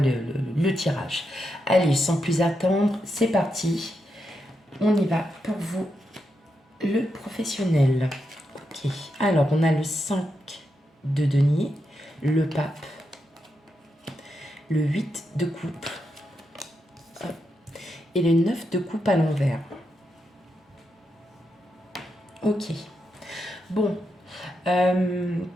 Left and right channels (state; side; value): normal; both; correlation 0.85